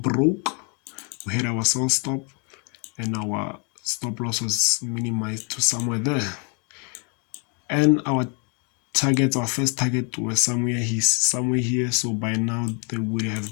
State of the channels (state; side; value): quieter; right; 35.5 dB